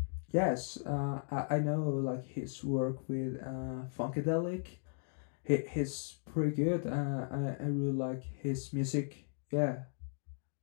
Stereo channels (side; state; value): right; silent; digital silence